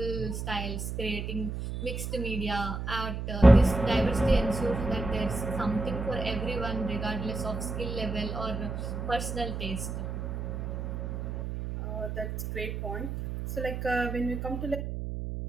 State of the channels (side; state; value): right; noise; hum, 5 dB below the sound